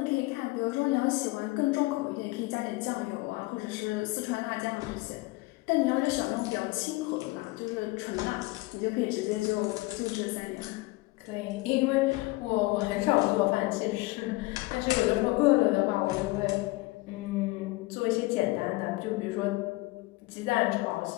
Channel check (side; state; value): right; quieter; 21.7 dB